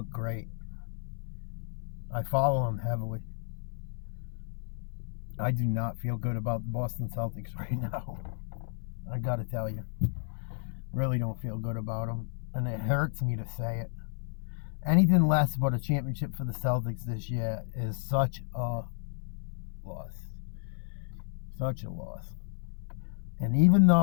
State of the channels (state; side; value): silent; right; 56 dB below the other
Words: great. I follow them heavily. I do not feel good about the Boston Celtics right now. I got to tell you. Really don't feel good about them. And it hurts me to say it. Anything less but a championship for the Celtics this year is such a loss. Such a loss. And even